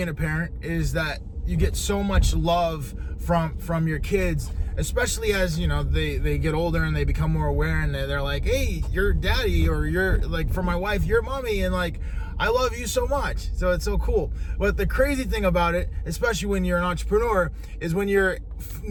a parent is that you get so much love from your kids, especially as they get older and they become more aware, and they're like, hey, you're daddy, or you're like, for my wife, you're mommy, and like, I love you so much. So it's so cool. But the crazy thing about it, especially when you're an entrepreneur, is when you're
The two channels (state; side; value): identical; both; correlation 1.00